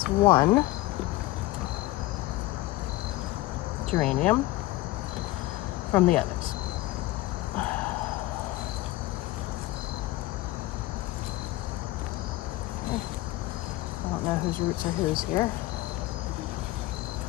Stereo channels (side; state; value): right; quieter; 18.1 dB